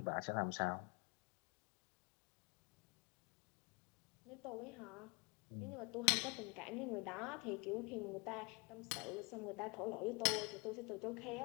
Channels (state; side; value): quieter; right; 29.9 dB